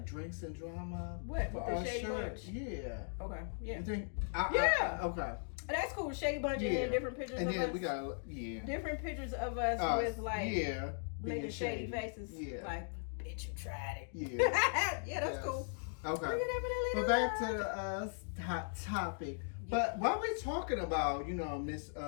drinks and drama. What, with the Shady Bunch? Yeah. Okay. Yeah. You think? Okay. That's cool. Shady Bunch and then different pictures and of then us. We got different pictures of us with like making shady faces. Yeah. Like, bitch, you tried it. Yeah. Yeah, that's cool. Okay. But back to the hot topic. But while we're talking about, Miss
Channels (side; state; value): right; silent; digital silence